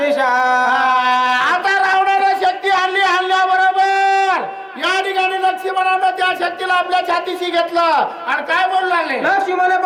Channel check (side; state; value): both; identical; correlation 1.00